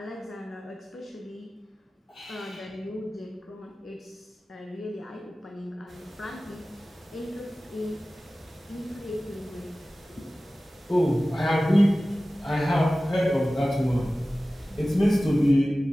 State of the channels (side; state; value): both; normal; correlation 0.96